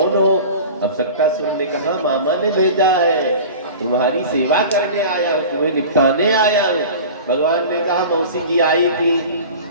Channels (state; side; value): inverted; both; correlation -0.37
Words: हो? अब सक्कासुर ने कहा मामा ने भेजा है, तुम्हारी सेवा करने आया हूँ, तुम्हें निपटाने आया हूँ। भगवान ने कहा मौसी जी आई थी,